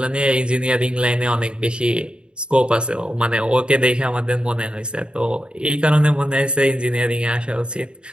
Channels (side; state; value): left; late; 0.052 ms